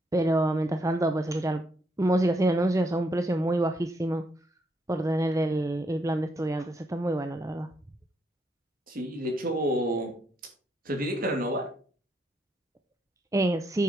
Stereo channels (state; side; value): normal; both; correlation 0.75